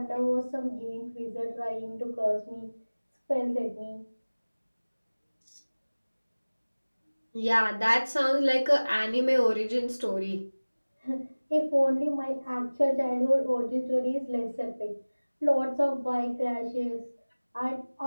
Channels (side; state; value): both; inverted; correlation -1.00